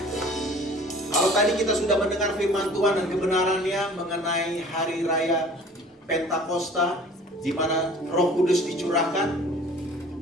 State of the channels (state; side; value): normal; both; correlation 0.48